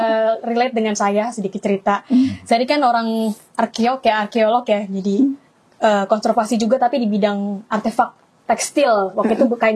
relate dengan saya sedikit cerita. Saya kan orang arkeolog ya, jadi konservasi juga tapi di bidang artefak tekstil. Waktu itu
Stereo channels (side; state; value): both; identical; correlation 1.00